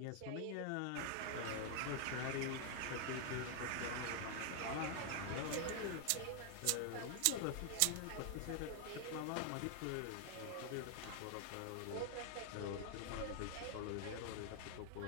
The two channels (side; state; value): both; different; correlation 0.00